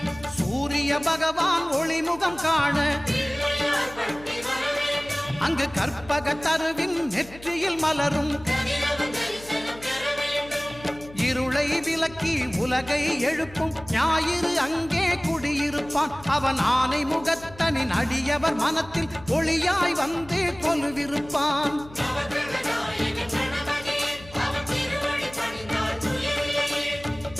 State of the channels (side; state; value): left; noise; hum, 19 dB below the sound